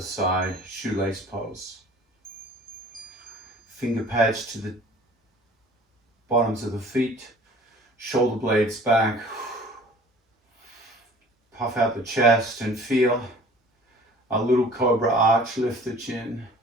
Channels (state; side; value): normal; both; correlation 0.48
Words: side, shoelace pose. Finger pads to the bottoms of the feet, shoulder blades back. Puff out the chest and feel a little cobra arch, lift the chin.